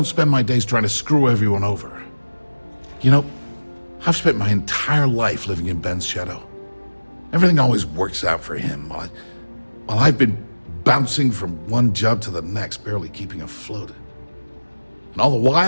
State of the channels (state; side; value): inverted; both; correlation -1.00